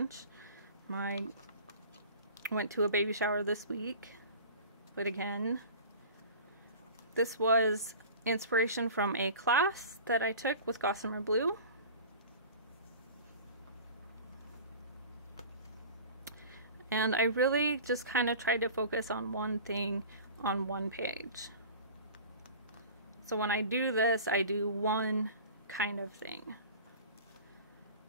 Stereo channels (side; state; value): both; inverted; correlation -0.39